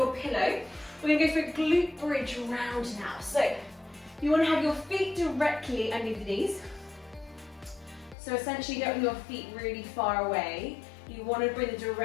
pillow. We're going to go for a glute bridge round now. So you want to have your feet directly underneath the knees. So essentially you don't want your feet really far away. You want to bring them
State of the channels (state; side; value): drops out; right; at 8.2 s